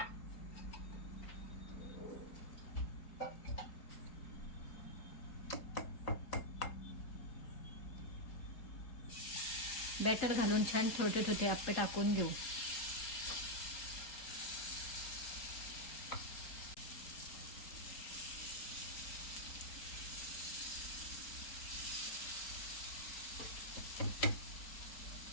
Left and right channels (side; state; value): right; late; 4.3 ms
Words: बॅटर घालून छान छोटे छोटे आप्पे टाकून घेऊ.